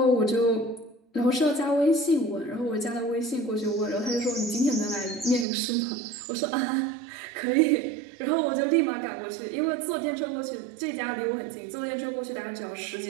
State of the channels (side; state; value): left; drops out; at 5.5 s